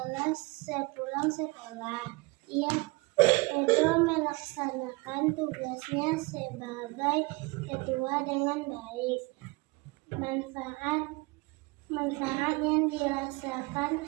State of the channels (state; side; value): quieter; left; 25.4 dB